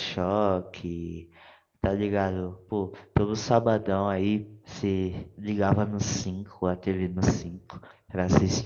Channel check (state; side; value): identical; both; correlation 1.00